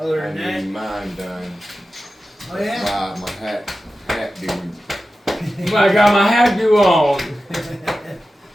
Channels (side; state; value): both; normal; correlation 0.93